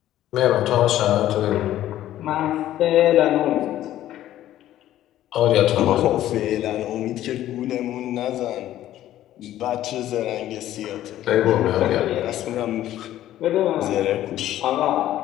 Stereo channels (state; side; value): quieter; right; 13.1 dB